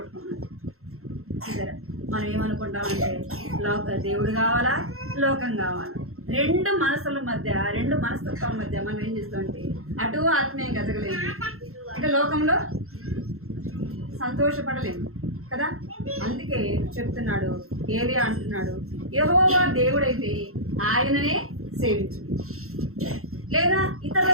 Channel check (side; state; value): left; late; 0.63 ms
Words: సరే, మనం ఏమనుకుంటామంటే దేవుడు కావాలా, లోకం కావాలా, రెండు మనసుల మధ్య, రెండు మనస్తత్వాల మధ్య మనం ఏం చేస్తామంటే అటు ఆత్మీయంగా ఎదగలేము, అంటే లోకంలో సంతోషపడలేము కదా. అందుకే చెప్తున్నాడు, ఏలియా అంటున్నాడు, యెహోవా దేవుడైతే ఆయననే సేవించు, లేదా ఇతర